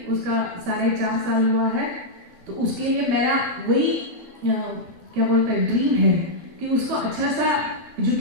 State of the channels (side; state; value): left; late; 12 ms